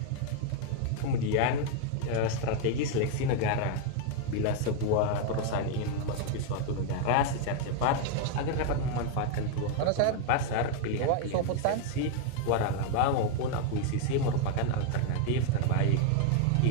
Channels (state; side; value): different; both; correlation 0.00